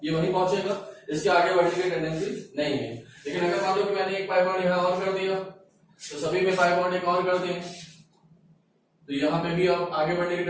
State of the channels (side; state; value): both; identical; correlation 1.00